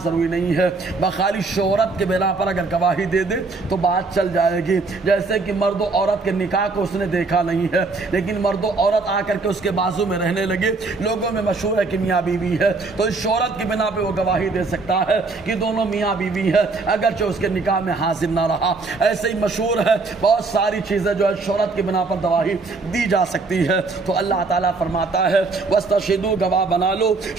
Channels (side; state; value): left; quieter; 3.8 dB